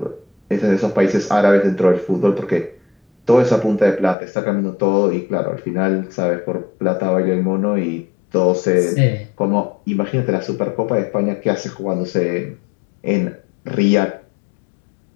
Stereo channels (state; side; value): drops out; right; at 4.2 s